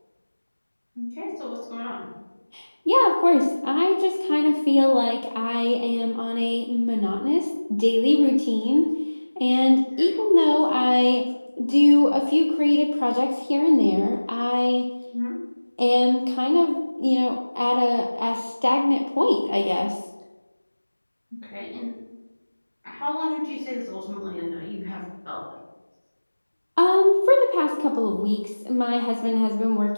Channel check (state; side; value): inverted; both; correlation -1.00